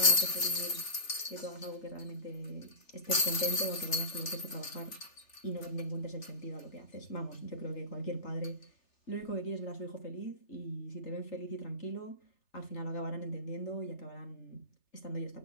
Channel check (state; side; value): late; right; 3.4 ms